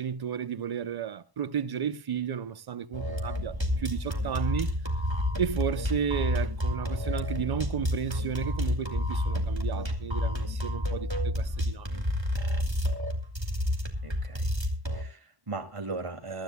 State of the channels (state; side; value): late; left; 1.1 ms